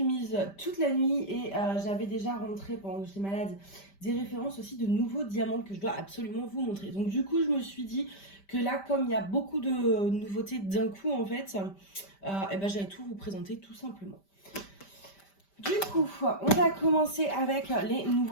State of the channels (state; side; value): late; right; 5.1 ms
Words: mise toute la nuit et j'avais déjà rentré pendant que j'étais malade des références aussi de nouveaux diamants que je dois absolument vous montrer. Donc du coup je me suis dit que là comme il y a beaucoup de nouveautés d'un coup en fait, et ben j'allais tout vous présenter tout simplement. Du coup, on va commencer avec les